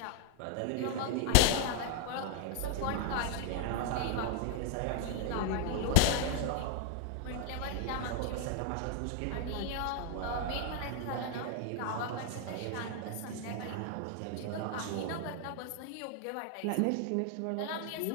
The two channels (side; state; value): both; different; correlation 0.00